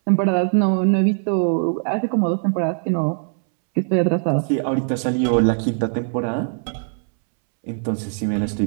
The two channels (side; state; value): left; silent; 65 dB below the other